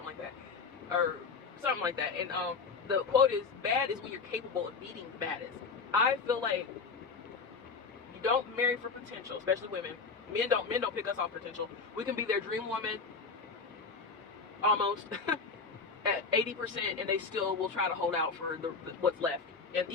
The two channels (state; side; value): quieter; right; 4.8 dB